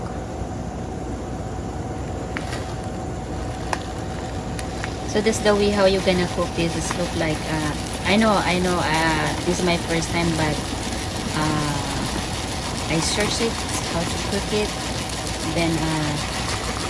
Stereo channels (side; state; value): both; identical; correlation 1.00